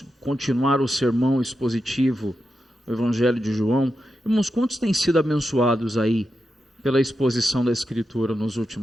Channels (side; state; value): both; normal; correlation 0.88